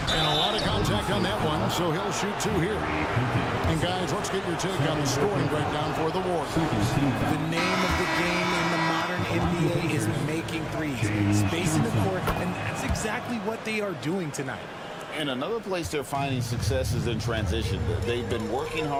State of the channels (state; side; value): identical; both; correlation 1.00